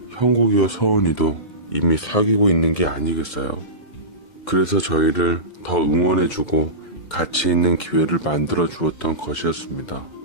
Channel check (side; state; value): right; late; 2.1 ms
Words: 형국이와 서은이도 이미 사귀고 있는 게 아니겠어요. 그래서 저희를 더 응원해주고 같이 있는 기회를 만들어 주었던 것이었습니다.